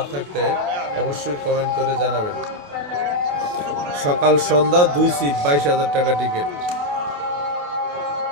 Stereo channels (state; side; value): late; left; 28 ms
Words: থাকলে অবশ্যই কমেন্ট করে জানাবেন। সকাল সন্ধ্যা 2 সিপ, 22,000 টাকা টিকিট।